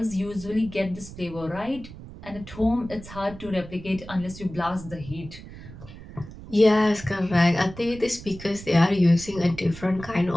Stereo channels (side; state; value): right; noise; rumble, 15 dB below the sound